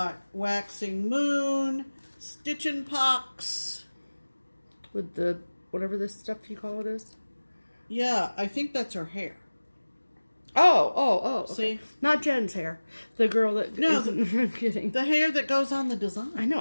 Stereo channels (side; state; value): both; inverted; correlation -1.00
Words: Waxing Moon, Stitchin' Pox. With the, whatever this stuff you call it is? Yeah, I think that's her hair. Oh. Okay. See? Not Jen's hair. The girl that... No, I'm kidding. The hair that goes on the design. I know,